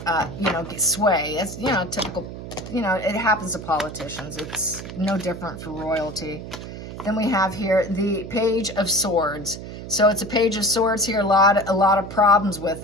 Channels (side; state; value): right; noise; hum, 10 dB below the sound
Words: get sway. It's, typical, it happens to politicians. It's no different for royalty. Then we have here the Page of Swords. So it's a Page of Swords here, a lot of problems with